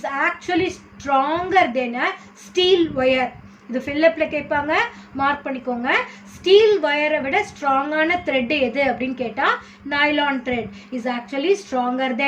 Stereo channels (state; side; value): identical; both; correlation 1.00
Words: actually stronger than a steel wire. இது ஃபில்லப்பில் கேட்பாங்க, மார்க் பண்ணிக்கோங்க. ஸ்டீல் ஒயரை விட ஸ்ட்ராங்கான த்ரெட் எது அப்படின்னு கேட்டால் nylon thread is actually stronger